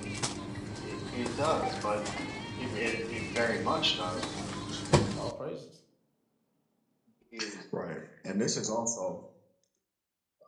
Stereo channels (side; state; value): both; identical; correlation 1.00